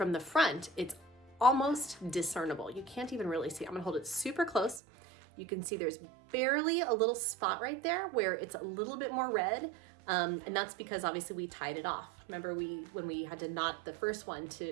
the front, it's almost discernible. You can't even really see. I'm gonna hold it super close. You can see there's barely a little spot right there where it's a little bit more red. And that's because obviously we tied it off. Remember when we had to knot the first one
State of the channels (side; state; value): left; drops out; at 4.8 s